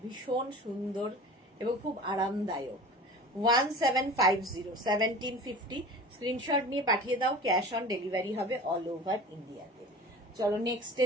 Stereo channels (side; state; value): both; normal; correlation 0.38